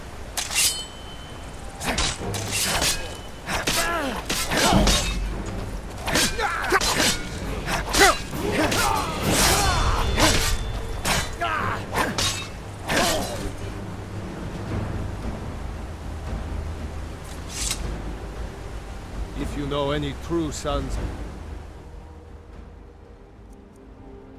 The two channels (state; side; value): identical; both; correlation 1.00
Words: If you know any true sons...